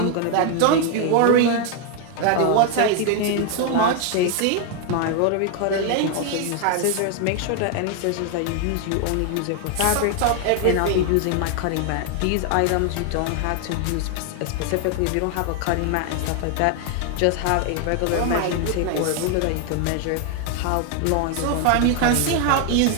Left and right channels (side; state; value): both; different; correlation 0.00